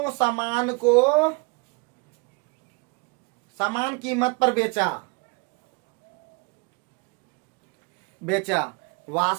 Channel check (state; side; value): quieter; left; 30.4 dB